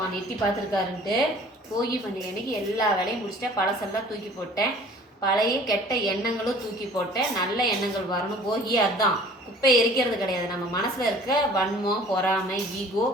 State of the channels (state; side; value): normal; both; correlation 0.49